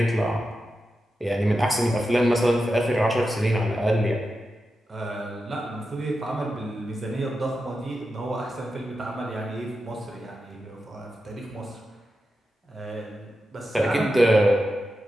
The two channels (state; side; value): normal; both; correlation 0.90